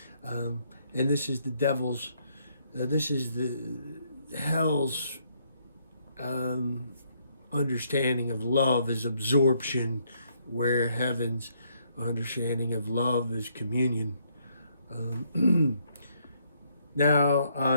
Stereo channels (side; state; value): both; inverted; correlation -0.71